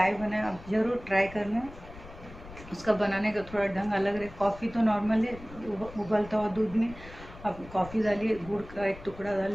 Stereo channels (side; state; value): left; noise; rumble, 17 dB below the sound